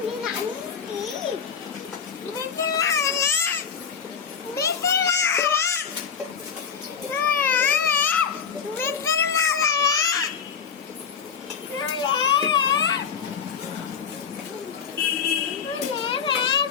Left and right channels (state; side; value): quieter; right; 6.7 dB